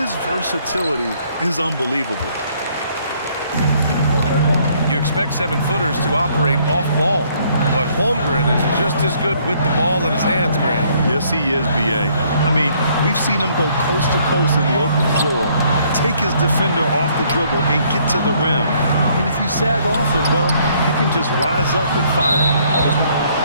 versatility is unbelievable. You expect 7-footers to operate off ball, but Holmgren is just as good with the ball in his hands, Grant. Yes, he is, B.A. I mean, we've seen him go coast to coast in the open floor, take his defender off the dribble and get to the rim. And if you sag off him, well, he can just rise up and fire.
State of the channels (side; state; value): both; inverted; correlation -0.65